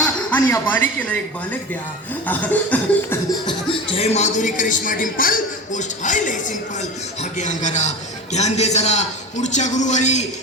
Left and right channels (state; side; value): normal; both; correlation 0.29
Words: आणि या बालिकेला एक बालक द्या. जय माधुरी, करिश्मा, डिंपल, पोस्ट हाय लय सिंपल. हा घे अंगारा, ध्यान दे जरा. पुढच्या गुरुवारी